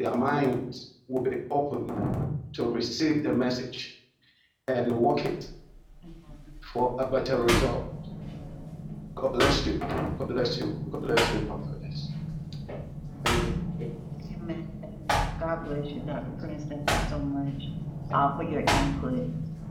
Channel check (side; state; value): both; identical; correlation 1.00